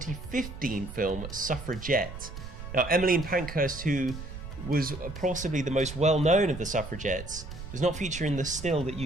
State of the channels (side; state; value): right; noise; rumble, 10 dB below the sound